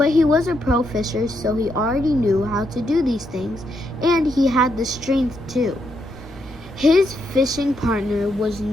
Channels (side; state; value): both; normal; correlation 0.79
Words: he was a pro fisher, so he already knew how to do these things, and he had the strength too. His fishing partner was